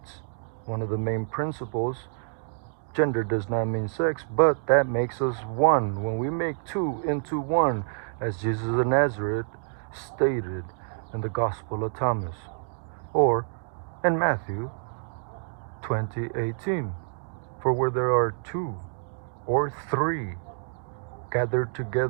One of the main principles, gender does not mean sex, but that makes us 1. When we make 2 into 1, as Jesus of Nazareth stated in the Gospel of Thomas, or in Matthew 20:18, for where there are 2 or 3 gathered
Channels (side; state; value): left; silent; digital silence